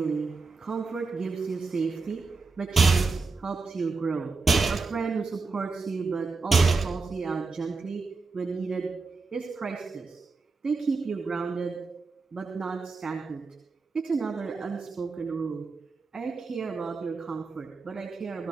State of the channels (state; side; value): quieter; left; 4.2 dB